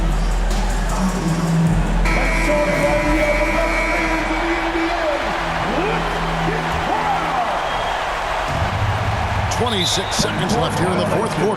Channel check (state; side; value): identical; both; correlation 1.00